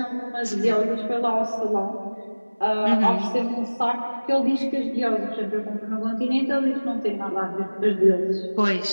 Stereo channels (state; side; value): inverted; both; correlation -1.00